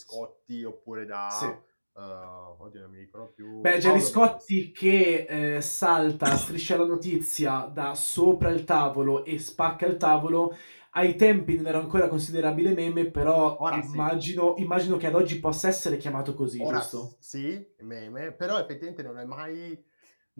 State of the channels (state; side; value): inverted; both; correlation -1.00